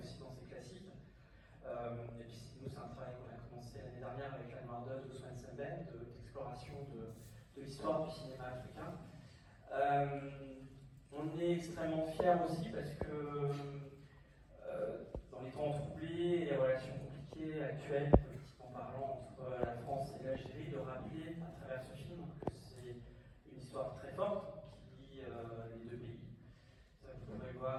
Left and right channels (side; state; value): both; identical; correlation 1.00